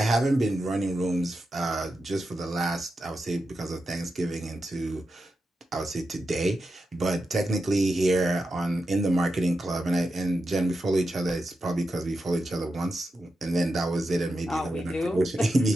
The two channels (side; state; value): both; normal; correlation 0.89